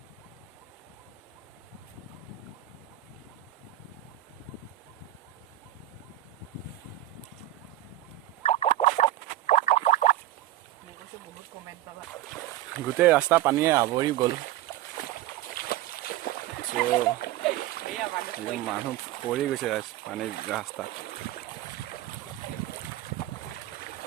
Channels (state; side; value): quieter; left; 14.8 dB